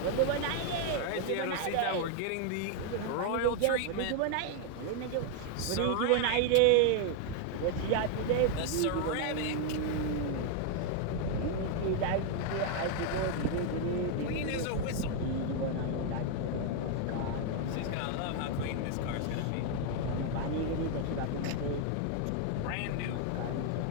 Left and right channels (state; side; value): different; both; correlation 0.00